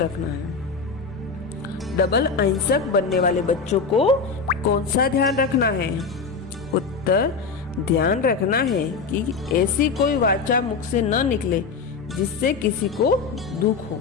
है? डबल अहिंसक बनने वाले बच्चों को कौन सा ध्यान रखना है? उत्तर, ध्यान रखना है कि ऐसी कोई वाचा मुख से न निकले जिससे किसी को दुख हो,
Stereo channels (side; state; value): right; quieter; 5.0 dB